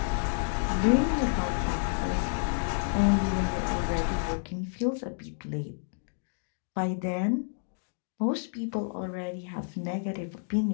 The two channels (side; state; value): right; silent; digital silence